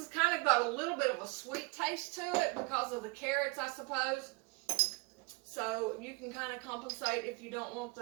kind of got a little bit of a sweet taste to it because of the carrots, I suppose. So you can kind of compensate if you don't want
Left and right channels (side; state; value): left; quieter; 28.7 dB